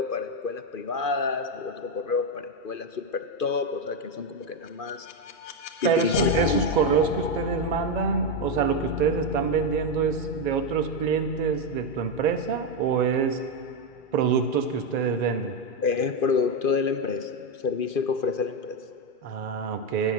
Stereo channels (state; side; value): late; right; 2.5 ms